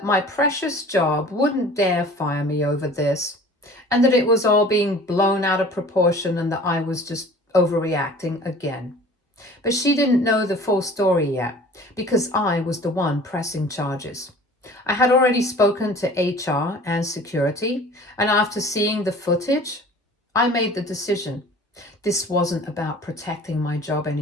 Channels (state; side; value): normal; both; correlation 0.46